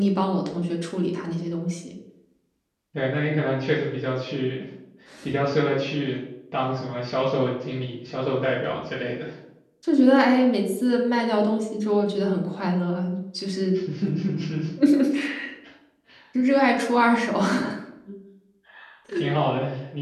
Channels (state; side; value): identical; both; correlation 1.00